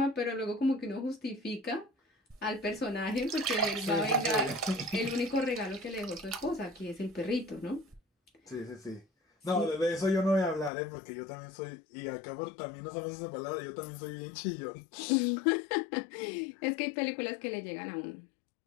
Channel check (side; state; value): right; drops out; at 10.7 s